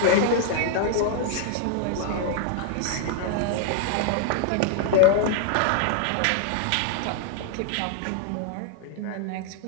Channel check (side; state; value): both; different; correlation 0.00